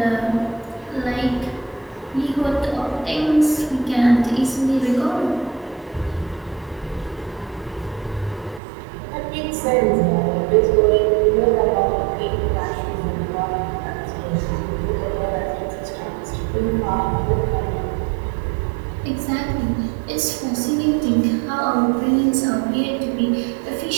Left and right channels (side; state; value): left; drops out; at 8.6 s